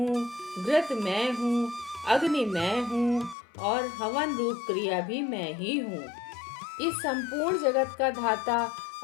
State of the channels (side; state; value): right; drops out; at 3.4 s